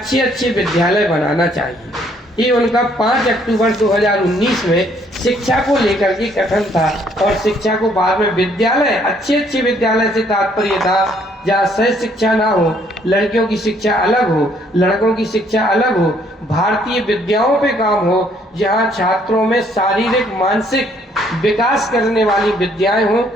विद्यालय बनाना चाहिए। ये उनका 5 अक्टूबर 2019 में शिक्षा को लेकर के कथन था। और शिक्षा को बाद में विद्यालय, अच्छे विद्यालय से तात्पर्य था जहाँ सह शिक्षा ना हो, लड़कियों की शिक्षा अलग हो, लड़कों की शिक्षा अलग हो, भारतीय विद्याओं पे काम हो, जहाँ छात्रों में शारीरिक मानसिक विकास करने वाली विद्याएं हों,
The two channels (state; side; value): normal; both; correlation 0.65